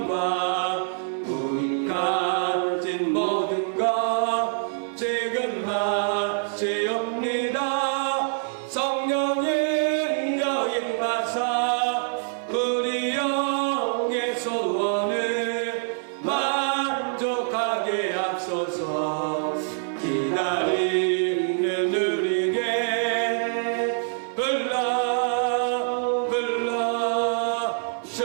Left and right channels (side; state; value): left; silent; digital silence